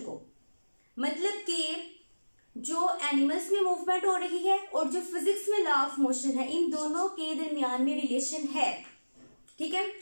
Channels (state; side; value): inverted; both; correlation -1.00